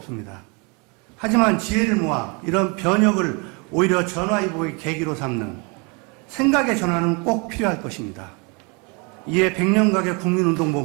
하지만 지혜를 모아 이런 변혁을 오히려 전화위복의 계기로 삼는 생각의 전환은 꼭 필요할 것입니다. 이에 백년가게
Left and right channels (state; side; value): quieter; left; 31.5 dB